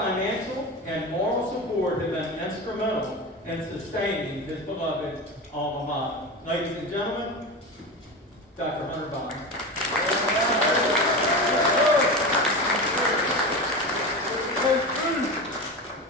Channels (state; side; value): normal; both; correlation 0.24